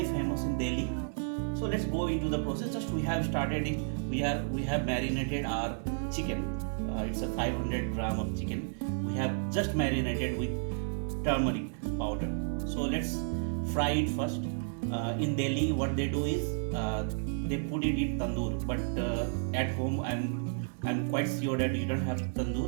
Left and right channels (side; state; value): left; silent; 56 dB below the other